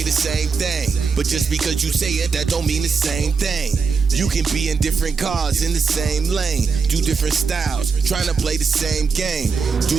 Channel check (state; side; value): quieter; left; 5.2 dB